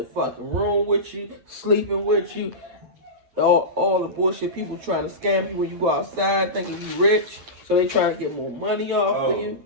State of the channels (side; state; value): left; late; 9.1 ms